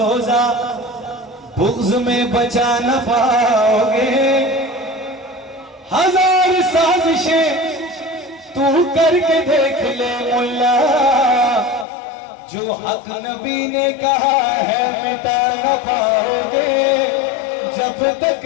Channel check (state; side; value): drops out; right; at 11.9 s